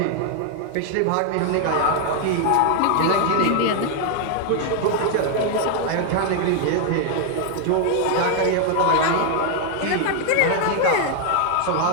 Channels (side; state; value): both; different; correlation 0.01